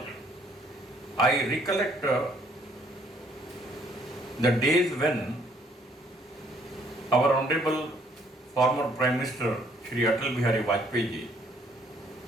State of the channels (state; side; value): normal; both; correlation 0.64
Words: I recollect the days when our honorable former Prime Minister Shri Atal Bihari Vajpayee ji,